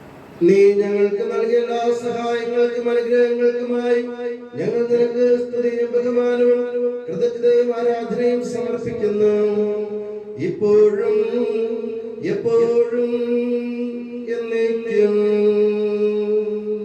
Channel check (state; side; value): identical; both; correlation 1.00